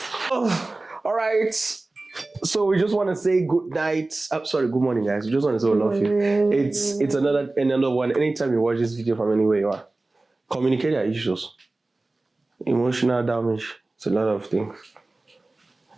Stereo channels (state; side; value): quieter; left; 3.1 dB